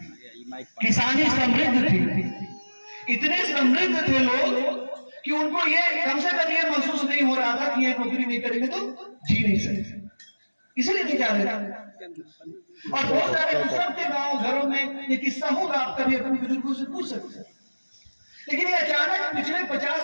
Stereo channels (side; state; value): both; inverted; correlation -1.00